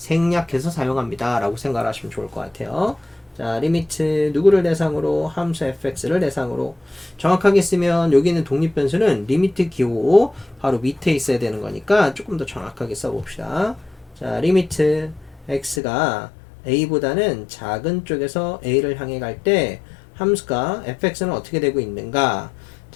사용합니다 라고 생각을 하시면 좋을 것 같아요. 자, 리미트 누구를 대상으로? 함수 fx를 대상으로. 정확하게 쓰면 여기 있는 독립변수는 리미트 기호 바로 밑에 있어야 되는 거니까 조금 더 정확하게 써봅시다. 자, 리미트 x가 a보다는 작은 쪽에서 a를 향해 갈 때 함수가 fx는 어떻게 되고 있는가?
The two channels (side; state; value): right; drops out; at 15.8 s